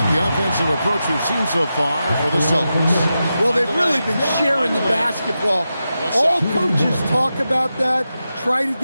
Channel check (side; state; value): both; inverted; correlation -0.90